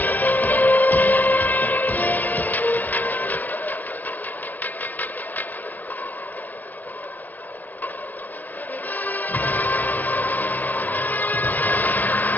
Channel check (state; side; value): late; right; 0.083 ms